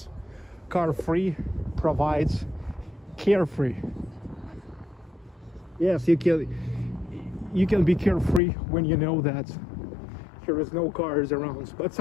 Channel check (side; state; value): right; drops out; at 8.4 s